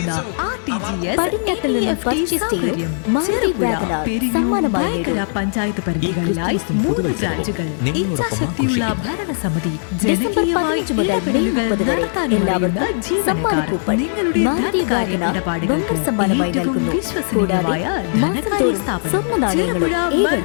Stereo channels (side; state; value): right; silent; digital silence